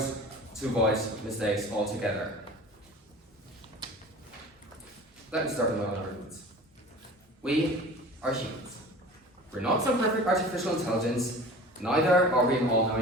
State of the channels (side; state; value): both; normal; correlation 0.40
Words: mistakes altogether. Let me start with my own arguments. We are humans. We're not some perfect artificial intelligence, neither are we an